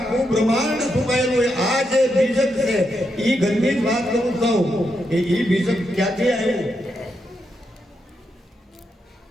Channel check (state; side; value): normal; both; correlation 0.83